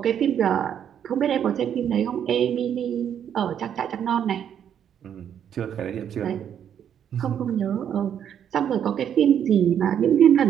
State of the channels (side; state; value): left; quieter; 9.1 dB